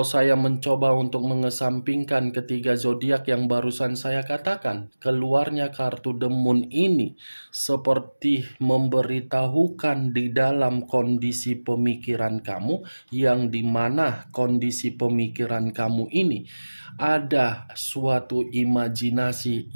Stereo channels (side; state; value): both; inverted; correlation -1.00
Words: saya mencoba untuk mengesampingkan ketiga zodiak yang barusan saya katakan, keluarnya kartu The Moon ini seperti memberitahukan di dalam kondisi pemikiran kamu, yang dimana kondisi pemikiran kamu ini ada suatu imajinasi